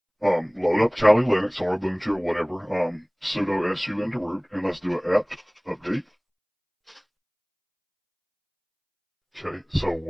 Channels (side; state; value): both; identical; correlation 1.00